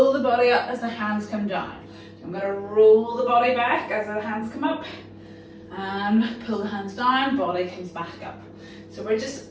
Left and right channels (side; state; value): both; identical; correlation 1.00